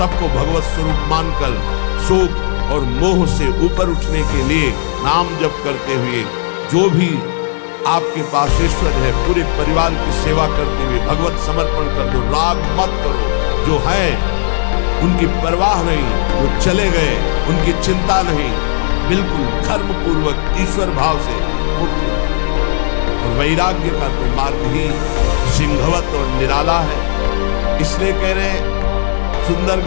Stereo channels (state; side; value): silent; right; digital silence